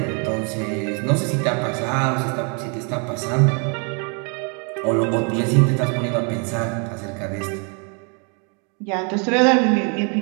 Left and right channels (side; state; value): left; quieter; 36.3 dB